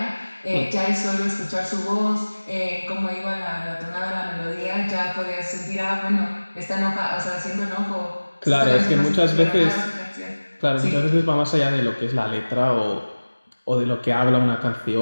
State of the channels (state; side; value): inverted; both; correlation -1.00